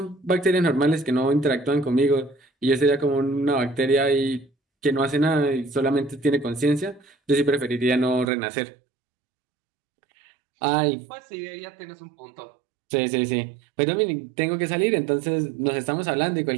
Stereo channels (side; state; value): left; drops out; at 8.3 s